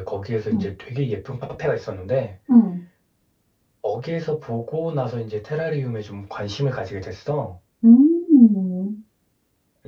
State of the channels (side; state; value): both; identical; correlation 1.00